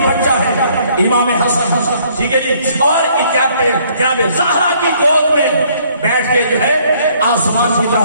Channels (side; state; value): both; inverted; correlation -0.63